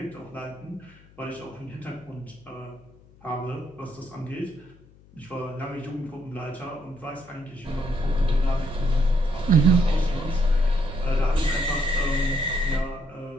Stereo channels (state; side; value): noise; left; hum, 26 dB below the sound